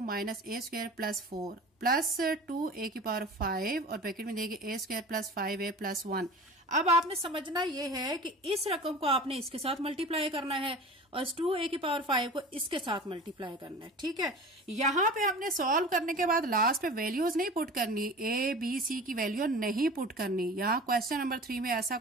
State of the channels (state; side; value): normal; both; correlation 0.37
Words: minus a² plus 4 plus 2a⁵ और ब्रैकेट में दिया गया a² प्लस 5a प्लस 1। अब आपने समझना ये है कि इस रकम को आपने इसके साथ मल्टीप्लाई करना है और 2a⁵ को इसके साथ मल्टीप्लाई करना है, ठीक है। यहां पे हमने सॉल्व करने के बाद लास्ट पे वैल्यूज नहीं पुट करनी, a b c की वैल्यू नहीं पुट करनी। यहाँ क्वेश्चन नंबर 3 में ऐसा